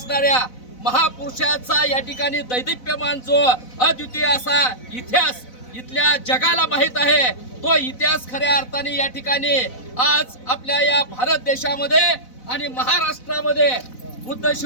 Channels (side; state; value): right; late; 4.0 ms